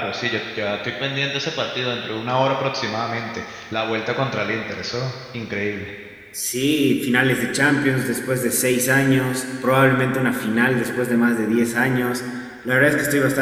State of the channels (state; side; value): identical; both; correlation 1.00